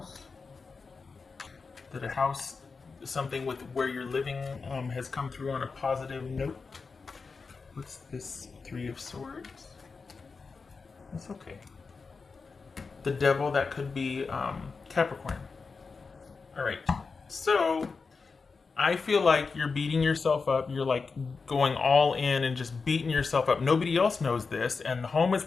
That a house, something with where you're living, has come through on a positive note. What's this? Three of Swords. That's okay. The Devil, that could be Capricorn. All right. So I feel like you're beating yourself up. You're like going all in and just beating yourself up. Nobody else knows this, and the home is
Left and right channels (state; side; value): quieter; right; 4.7 dB